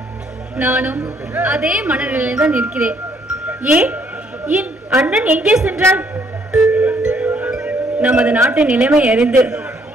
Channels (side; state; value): both; normal; correlation 0.67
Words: நானும் அதே மனநிலையில் தான் இருக்கிறேன். ஏன் என் அண்ணன் எங்கே சென்றார்? நமது நாட்டின் நிலைமை அறிந்து